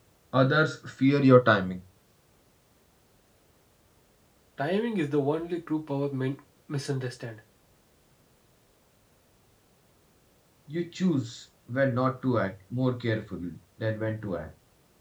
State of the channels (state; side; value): identical; both; correlation 1.00